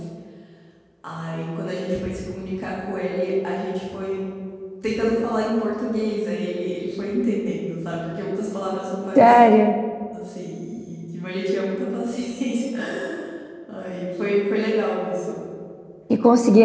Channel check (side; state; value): both; identical; correlation 1.00